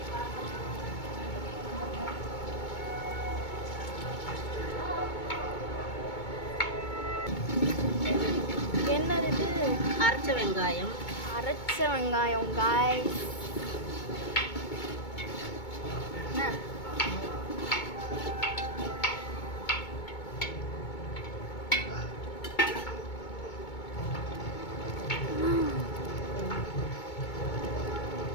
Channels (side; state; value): right; late; 2.2 ms